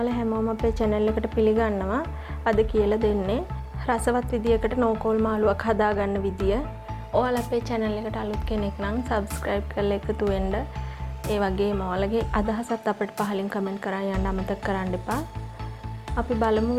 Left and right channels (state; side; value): identical; both; correlation 1.00